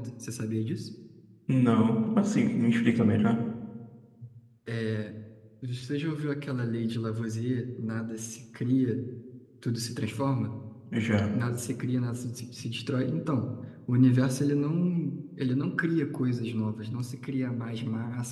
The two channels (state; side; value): identical; both; correlation 1.00